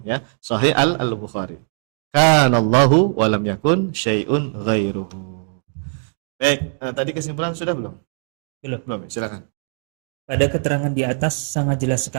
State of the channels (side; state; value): left; silent; 62 dB below the other